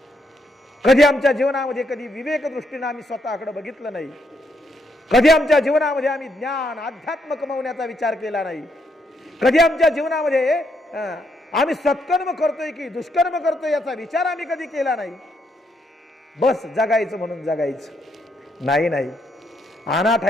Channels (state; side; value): normal; both; correlation 0.76